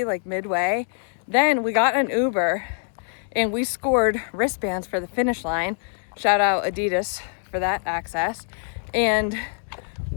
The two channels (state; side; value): silent; right; digital silence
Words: midway. Then we got an Uber and we scored wristbands for the finish line. Shout out Adidas for that access. And